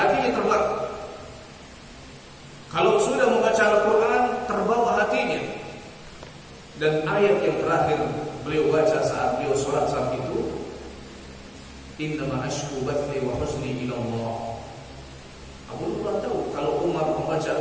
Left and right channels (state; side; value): identical; both; correlation 1.00